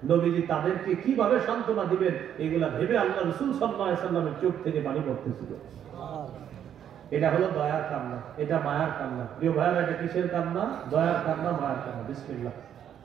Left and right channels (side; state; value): left; quieter; 9.6 dB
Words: নবীজি তাদেরকে কিভাবে সান্ত্বনা দিবেন এগুলা ভেবে আল্লাহ রাসূল সাল্লাল্লাহু আলাইহি ওয়াসাল্লামের চোখ থেকে পানি পড়তেছিল। এটা হলো দয়ার কান্না, এটা মায়ার কান্না। প্রিয় ভাইরা, এটা কিসের কান্না? দয়ার কান্না, মায়ার কান্না। বিসমিল্লাহ।